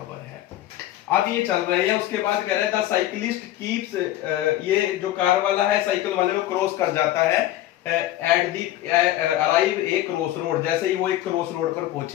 है। अब ये चल रहे हैं, उसके बाद कह रहे हैं द साइकिलिस्ट कीप्स, ये जो कार वाला है साइकिल वाले को क्रॉस कर जाता है at the arrive a cross road. जैसे ही वो एक क्रॉस रोड पर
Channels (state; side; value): quieter; right; 14.2 dB